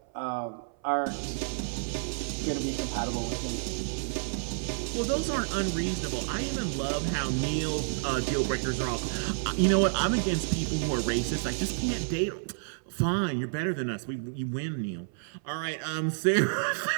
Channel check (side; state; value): left; silent; 58 dB below the other